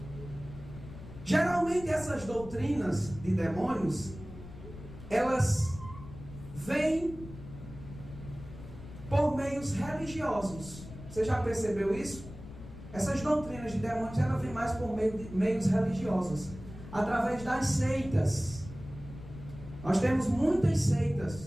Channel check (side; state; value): left; noise; rumble, 14 dB below the sound